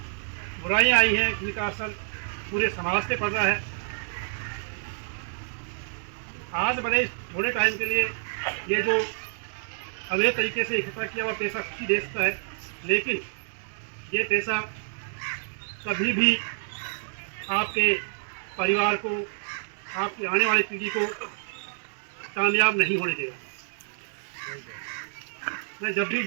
बुराइयाँ आई हैं जिनका असर पूरे समाज पे पड़ रहा है। आज भले थोड़े टाइम के लिए ये जो अवैध तरीके से इकट्ठा किया हुआ पैसा खुशी दे सकता है, लेकिन ये पैसा कभी भी आपके परिवार को, आपकी आने वाली पीढ़ी को कामयाब नहीं होने देगा। मैं जब भी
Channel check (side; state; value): left; silent; digital silence